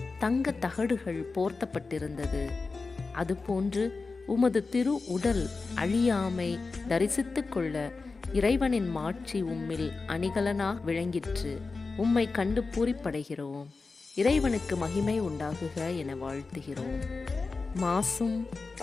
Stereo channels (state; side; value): quieter; right; 4.1 dB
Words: தங்க தகடுகள் போர்த்தப்பட்டிருந்தது. அதுபோன்று உமது திரு உடல் அழியாமை தரிசித்துக் கொள்ள இறைவனின் மாட்சி உம்மில் அணிகலனாக விளங்கிற்று. உம்மை கண்டு பூரிப்படைகிறோம். இறைவனுக்கு மகிமை உண்டாகுக என வாழ்த்துகிறோம். மாசும்